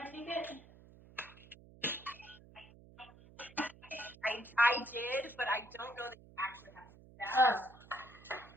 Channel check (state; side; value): noise; right; hum, 21 dB below the sound